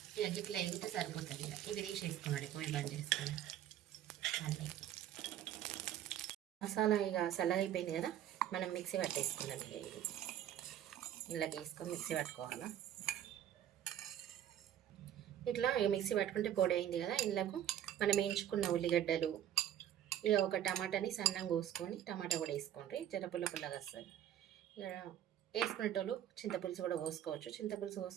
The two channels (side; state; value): left; quieter; 11.0 dB